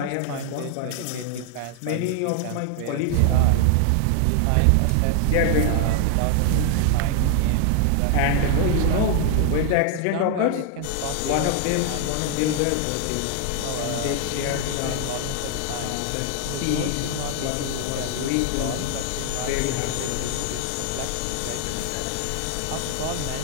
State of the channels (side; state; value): both; different; correlation 0.00